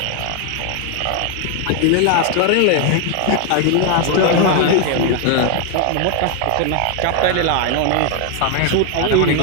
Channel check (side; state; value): both; different; correlation 0.00